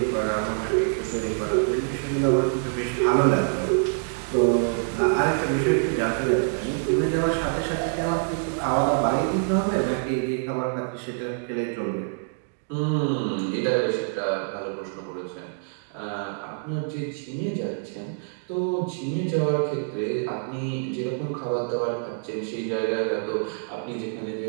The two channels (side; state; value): left; silent; digital silence